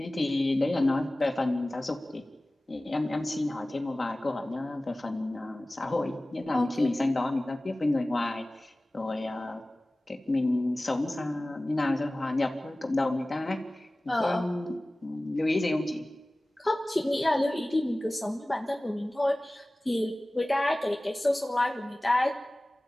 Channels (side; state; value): both; normal; correlation 0.98